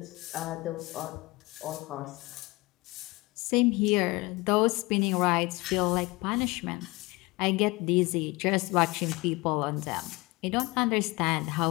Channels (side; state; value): right; quieter; 23.2 dB